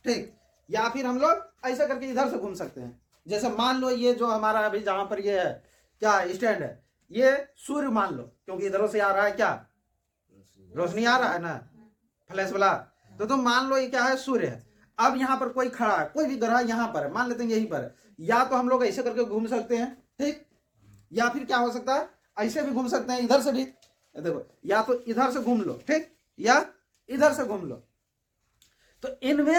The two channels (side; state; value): both; identical; correlation 1.00